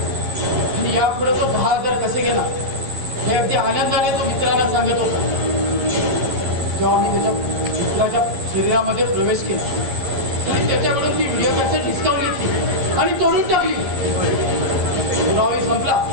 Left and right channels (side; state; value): left; late; 11 ms